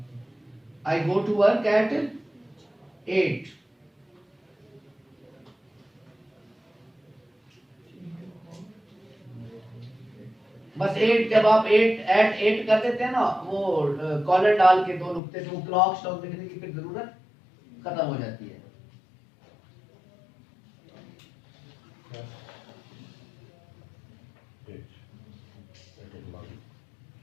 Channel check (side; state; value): right; drops out; at 15.2 s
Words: I go to work at 8. बस 8, जब आप 8 कर देते हैं ना, वो कॉलर डाल के 2 नुक्ते, तो क्लॉक स्टॉक लिखने की फिर जरूरत खत्म हो जाती है।